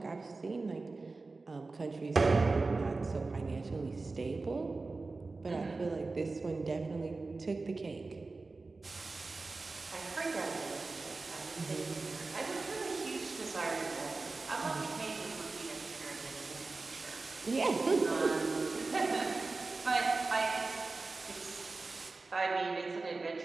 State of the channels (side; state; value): left; quieter; 3.7 dB